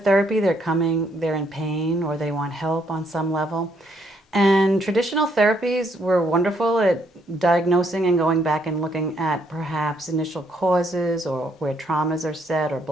they're in pain or they want help on some level. And traditional therapies were wonderful at diagnosing and going back and looking at perhaps initial causes or where traumas are set or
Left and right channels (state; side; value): normal; both; correlation 0.71